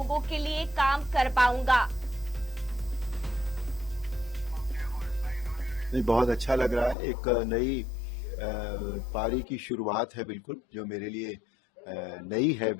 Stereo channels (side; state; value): right; drops out; at 7.0 s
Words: के लिए काम कर पाऊंगा। बहुत अच्छा लग रहा है। एक नई पारी की शुरुआत है, बिल्कुल जो मेरे लिए नई है,